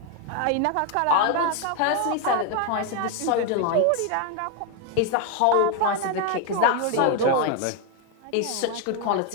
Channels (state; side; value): different; both; correlation 0.01